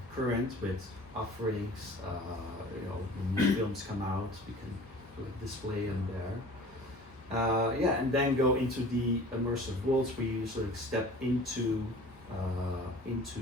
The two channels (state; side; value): normal; both; correlation 0.44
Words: current with offerings. You know, when new films come out, we can sort of display them there. Yeah, and then go into the immersive worlds where you sort of step into